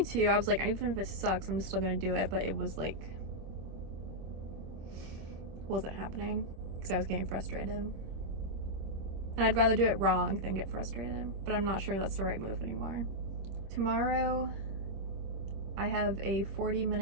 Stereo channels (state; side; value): late; left; 26 ms